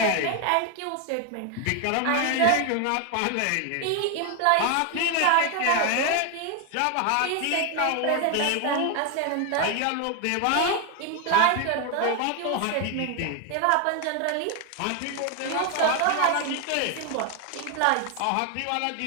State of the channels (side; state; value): both; different; correlation 0.01